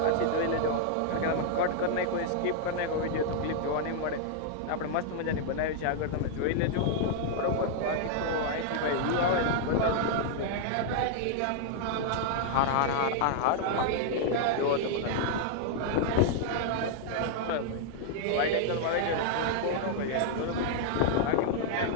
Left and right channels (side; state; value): both; different; correlation -0.01